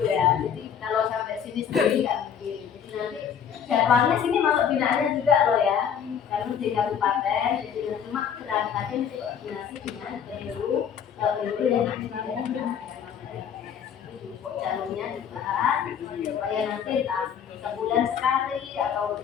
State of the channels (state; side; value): quieter; right; 8.1 dB